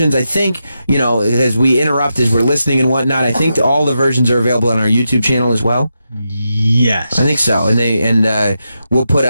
I think, as we interrupt, as we're listening and whatnot, I think all the versions are available on our YouTube channel as well. Yes. I think so. And we'll put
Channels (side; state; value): both; inverted; correlation -0.87